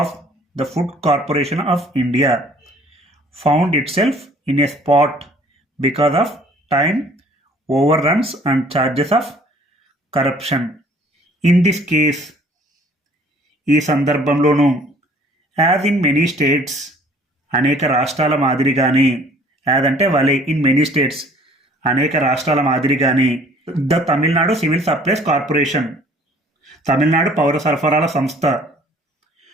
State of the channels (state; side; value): normal; both; correlation 0.54